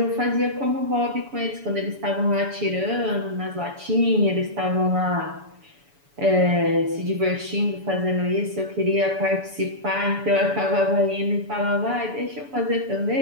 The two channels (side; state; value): left; late; 7.0 ms